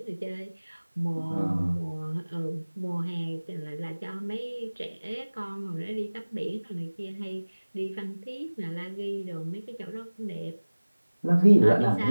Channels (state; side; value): inverted; both; correlation -1.00